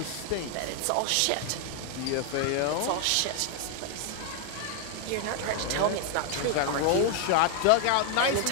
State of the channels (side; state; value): both; different; correlation 0.00